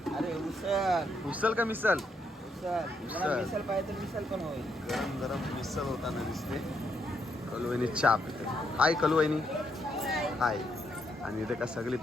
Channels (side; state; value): both; normal; correlation 0.77